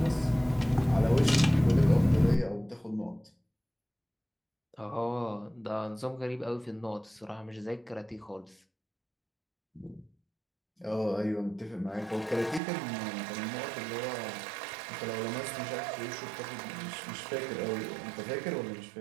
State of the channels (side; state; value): left; drops out; at 12.6 s